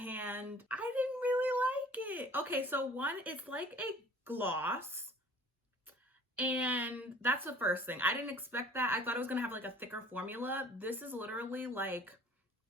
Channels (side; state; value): both; normal; correlation 0.49